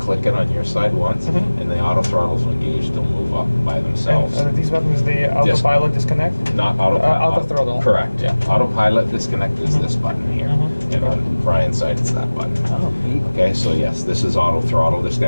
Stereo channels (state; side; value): inverted; both; correlation -1.00